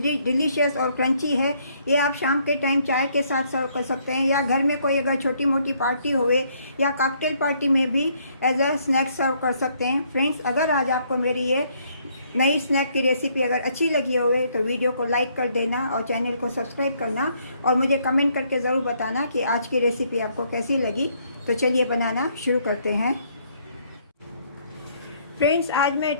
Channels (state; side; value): inverted; both; correlation -0.68